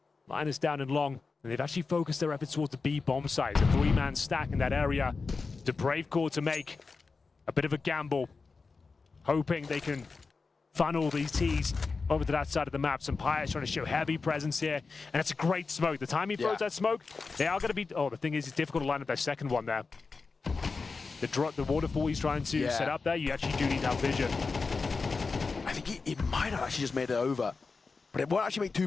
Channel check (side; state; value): right; quieter; 4.4 dB